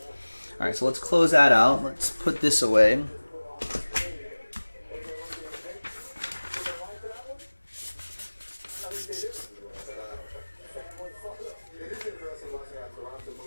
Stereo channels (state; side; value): inverted; both; correlation -1.00